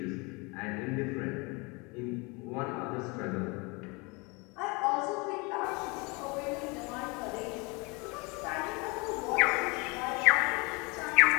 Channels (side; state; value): right; quieter; 28.0 dB